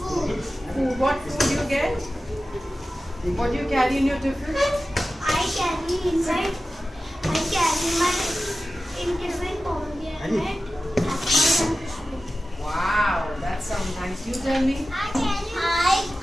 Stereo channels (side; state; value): both; normal; correlation 0.94